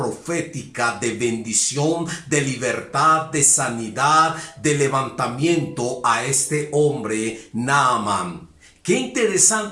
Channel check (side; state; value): both; identical; correlation 1.00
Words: de bendición, de libertad, de sanidad, de levantamiento a este hombre Naamán. Qué